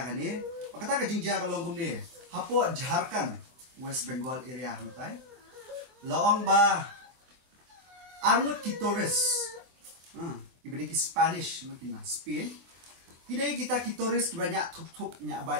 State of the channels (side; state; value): left; late; 23 ms